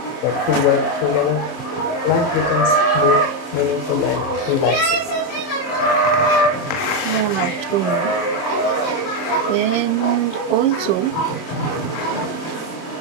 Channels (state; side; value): late; right; 30 ms